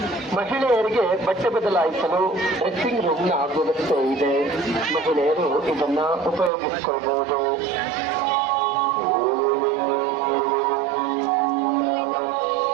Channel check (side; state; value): left; drops out; at 6.5 s